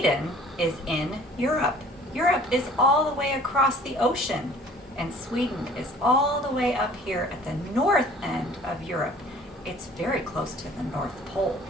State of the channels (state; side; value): normal; both; correlation 0.51